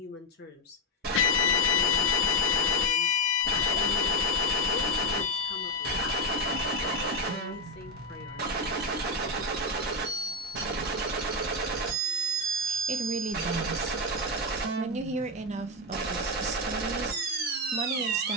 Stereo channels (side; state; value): both; normal; correlation 0.10